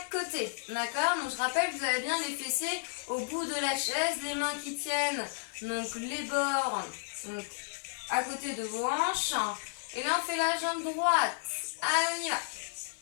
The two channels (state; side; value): silent; right; 55 dB below the other